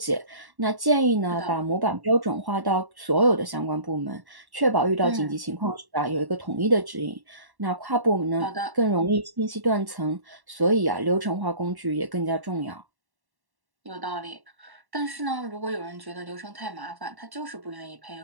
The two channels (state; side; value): late; left; 1.1 ms